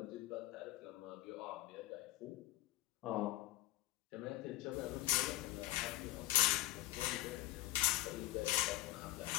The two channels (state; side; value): quieter; right; 17.1 dB